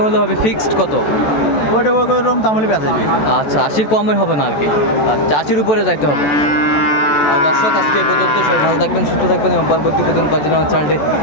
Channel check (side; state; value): right; late; 14 ms